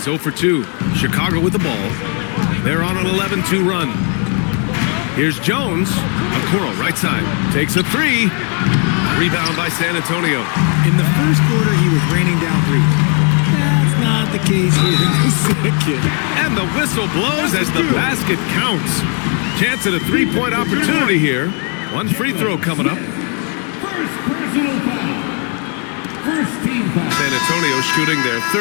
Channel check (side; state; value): right; quieter; 39.6 dB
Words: 0 for 2. Chicago with the ball. They're on an 11-2 run. Here's Jones. Okoro, right side. Takes a 3. Rebound by San Antonio. In the first quarter, he was raining down 3. That's not the case here in the second. And the whistle blows as the basket counts. Chance at a 3-point opportunity here. One free throw coming up. First personal foul. First team foul. San Antonio shooting their